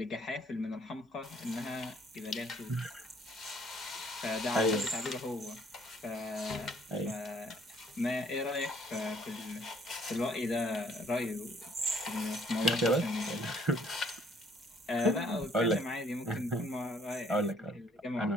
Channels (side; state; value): both; normal; correlation 0.63